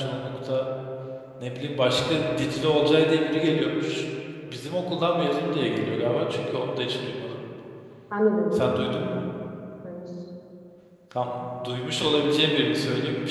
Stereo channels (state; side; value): identical; both; correlation 1.00